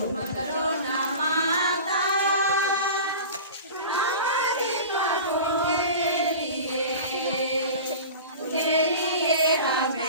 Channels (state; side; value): inverted; both; correlation -0.35